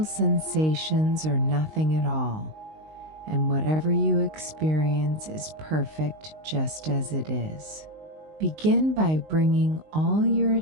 sensations or nothing at all, and whatever you experience is perfect just as it is. Begin by bringing all your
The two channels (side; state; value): left; late; 19 ms